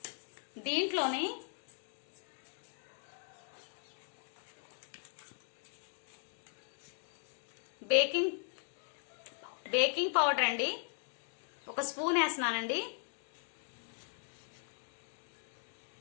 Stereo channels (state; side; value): silent; right; 52 dB below the other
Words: దీంట్లోనే బేకింగ్ పౌడర్ అండి, ఒక స్పూన్ వేస్తున్నానండి.